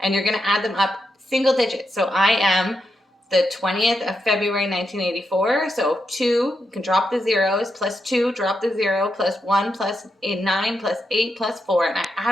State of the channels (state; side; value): normal; both; correlation 0.84